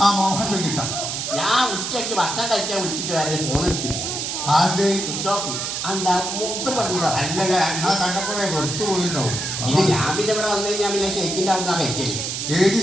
മോഹൻ വെങ്കിട്ട. ഞാൻ ഉച്ചയ്ക്ക് ഭക്ഷണം കഴിക്കാൻ വിളിച്ചിട്ട് വരെ ഫോൺ എടുത്തില്ല. Switch off. എന്താ മൂപ്പര് പറഞ്ഞതാ? അല്ലല്ല, ഞാൻ കണ്ടപ്പോഴേ വെറുത്തു പോയിട്ടുണ്ടാവും. ഇത് ഞാൻ പിന്നെ ഇവിടെ വന്നു കഴിഞ്ഞാൽ പിന്നെ ഷെയ്ക്കിന്റെ അവിടെ നിന്നാ കഴിക്കല്. ഏത്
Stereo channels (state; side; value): noise; right; hiss, 3 dB below the sound